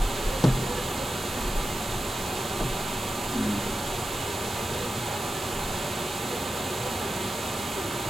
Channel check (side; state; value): both; normal; correlation 0.91